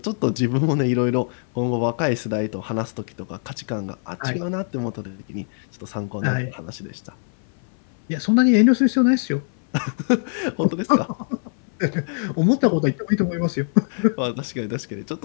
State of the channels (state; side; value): silent; right; 57 dB below the other